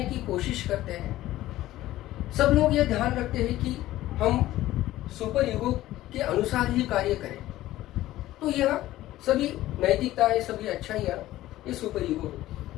की कोशिश करते हैं। सब लोग यह ध्यान रखते हैं कि हम सुपर ईगो के अनुसार ही कार्य करें। तो यह सभी नैतिकताएं, सभी अच्छाइयाँ, ये सुपर ईगो होती है।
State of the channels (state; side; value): quieter; right; 15.3 dB